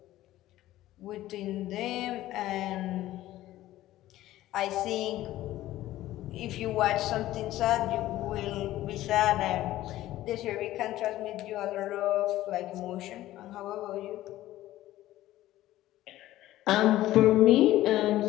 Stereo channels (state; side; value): quieter; right; 15.0 dB